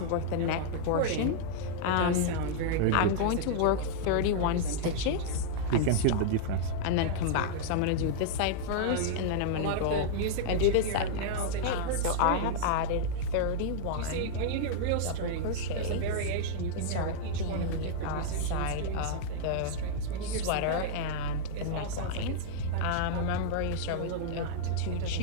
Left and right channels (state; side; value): different; both; correlation -0.02